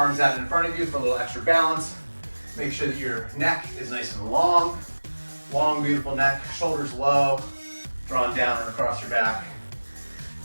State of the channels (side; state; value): both; inverted; correlation -1.00